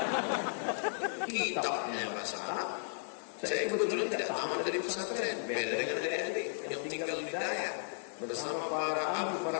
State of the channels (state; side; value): silent; right; digital silence